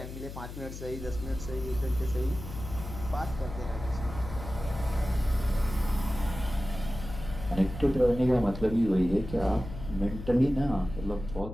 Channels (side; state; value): left; noise; hum, 10 dB below the sound